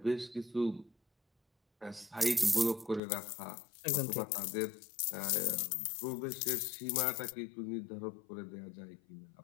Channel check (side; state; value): right; drops out; at 3.0 s